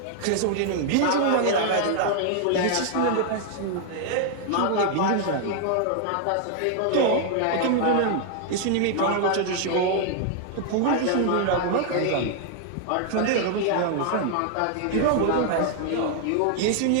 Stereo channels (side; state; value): both; different; correlation 0.00